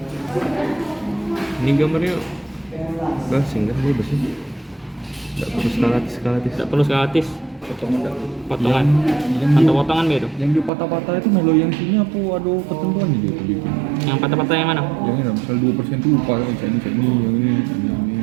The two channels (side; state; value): left; drops out; at 10.7 s